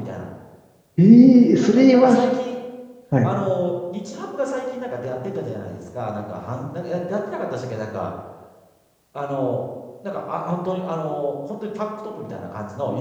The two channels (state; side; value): identical; both; correlation 1.00